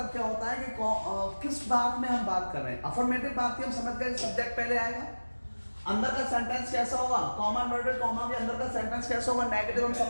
क्या होता है कि किस बात में हम बात कर रहे हैं। अफर्मेटिव बात की हम समझ गए, सब्जेक्ट पहले आएगा, अंदर का सेंटेंस कैसा होगा, कॉमा इन्वर्टेड कॉमा के अंदर का सेंटेंस कैसा होगा, नेगेटिव हम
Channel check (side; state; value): both; inverted; correlation -1.00